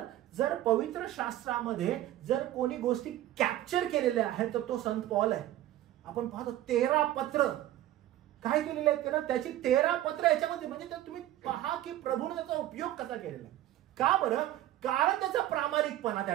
जर पवित्र शास्त्रामध्ये जर कोणी गोष्टी कॅप्चर केलेल्या आहेत तर तो संत पॉल आहे. आपण पाहतो 13 पत्र काय केलेले आहेत त्यानं, त्याची 13 पत्र याच्यामध्ये. म्हणजे तुम्ही पहा की प्रभूने त्याचा उपयोग कसा केलेला. का बरं? कारण त्याचा प्रामाणिकपणा त्या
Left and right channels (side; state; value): left; quieter; 13.8 dB